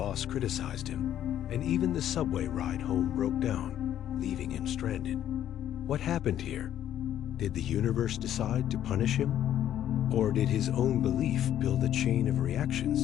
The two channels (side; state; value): right; quieter; 11.1 dB